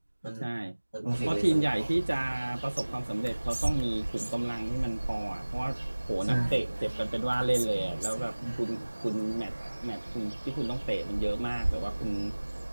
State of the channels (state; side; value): inverted; both; correlation -1.00